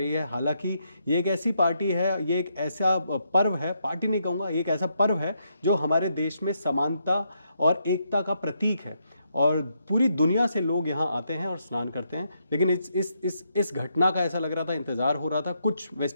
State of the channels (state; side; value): inverted; both; correlation -0.78